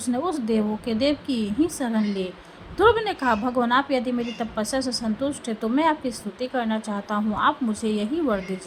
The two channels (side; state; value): both; identical; correlation 1.00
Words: उस देवों के देव की ही शरण ली। ध्रुव ने कहा, भगवान, आप यदि मेरी तपस्या से संतुष्ट है तो मैं आपकी स्तुति करना चाहता हूँ। आप मुझे यही वर